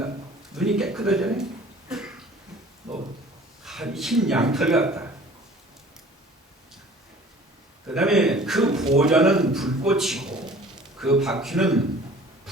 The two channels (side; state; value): both; normal; correlation 0.48